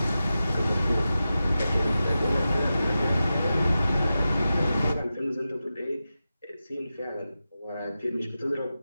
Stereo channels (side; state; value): both; inverted; correlation -0.92